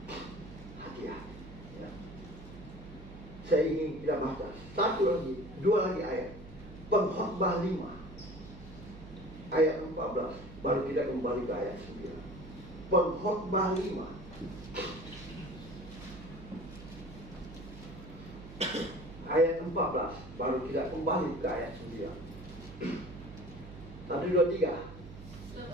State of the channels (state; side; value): noise; right; hum, 15 dB below the sound